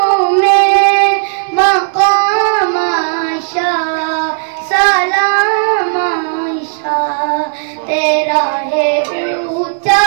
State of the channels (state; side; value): silent; left; digital silence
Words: में मकाम आयशा सलाम आयशा। तेरा है ऊंचा